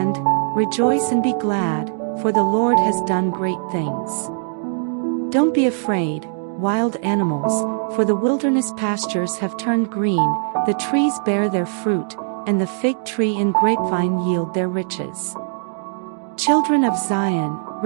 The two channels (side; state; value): left; silent; digital silence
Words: rejoice and be glad, for the Lord has done great things. Don't be afraid, wild animals, for the wilderness pastures have turned green, the trees bear their fruit, and the fig tree and grapevine yield their riches. Children of Zion,